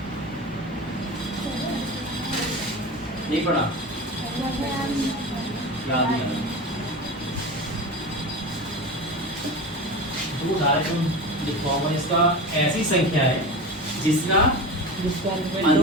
नहीं पढ़ा? याद नहीं आ रहा। तो डायरेक्ट लिखवाऊंगा इसका ऐसी संख्या है जिसका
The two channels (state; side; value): normal; both; correlation 0.28